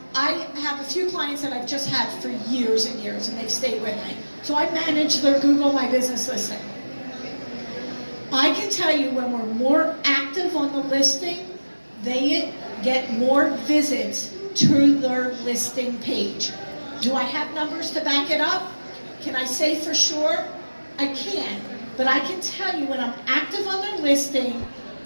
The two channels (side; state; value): both; inverted; correlation -1.00